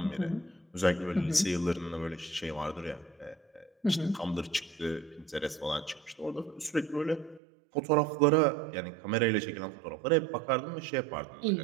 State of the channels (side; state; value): left; drops out; at 7.4 s